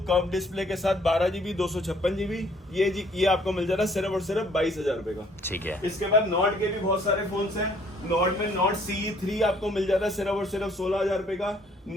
कर्व डिस्प्ले के साथ 12GB 256GB ये आपको मिल जाता है सिर्फ और सिर्फ 22,000 रुपए का। ठीक है। इसके बाद नॉट के भी बहुत सारे फोन्स हैं। नॉट में नॉट CE3 आपको मिल जाता है सिर्फ और सिर्फ 16,000 रुपए का।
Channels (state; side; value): normal; both; correlation 0.62